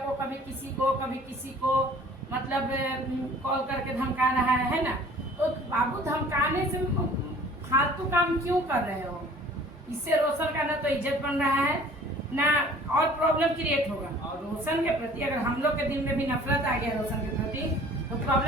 कभी किसी को मतलब कॉल करके धमका रहा है ना। तो बाबू धमकाने से फालतू काम क्यों कर रहे हो? इससे रोशन का ना तो इज्जत बन रहा है ना और प्रॉब्लम क्रिएट होगा। और रोशन के प्रति अगर हम लोग के दिल में भी नफरत आ गया रोशन के प्रति तो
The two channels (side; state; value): both; normal; correlation 0.50